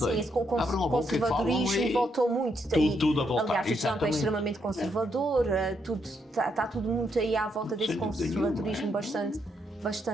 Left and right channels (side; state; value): both; normal; correlation 0.77